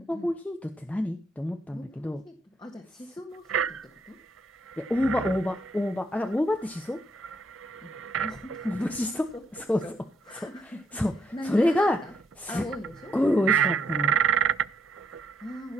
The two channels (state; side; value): normal; both; correlation 0.72